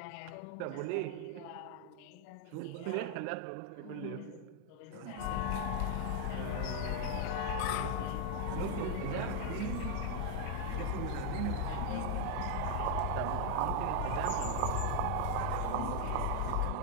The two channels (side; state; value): both; different; correlation 0.00